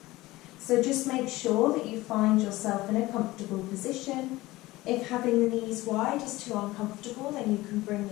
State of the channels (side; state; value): right; quieter; 18.8 dB